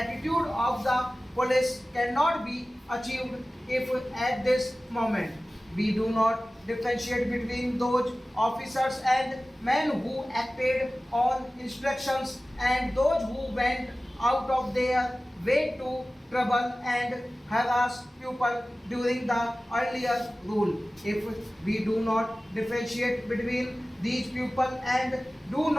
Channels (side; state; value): both; normal; correlation 0.97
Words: of the police cannot be achieved if at this moment we do not differentiate between those officers and men who acted on instructions and those who went out of their way to trouble and harass people during the earlier rule. If we do not differentiate between these people and do